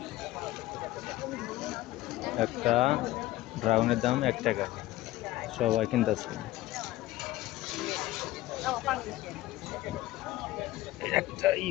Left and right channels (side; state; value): right; quieter; 16.8 dB